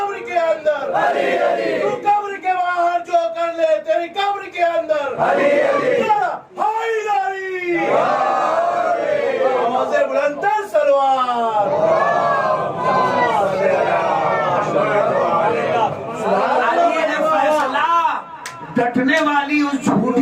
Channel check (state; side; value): identical; both; correlation 1.00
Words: ڈٹنے والی اس